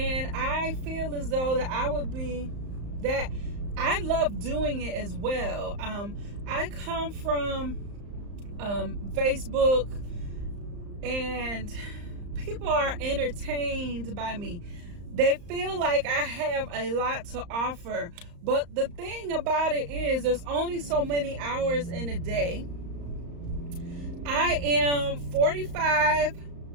I feel as though that I love doing it as well. I come from Facebook, and people are entertained by me. They feel like I have a lot to offer, but the thing about it is there's only so many hours in a day. I am 45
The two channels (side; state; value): left; late; 35 ms